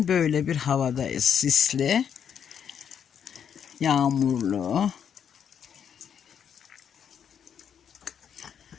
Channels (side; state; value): right; quieter; 8.1 dB